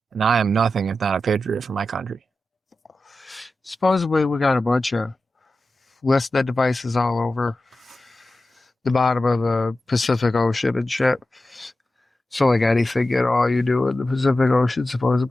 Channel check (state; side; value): normal; both; correlation 0.93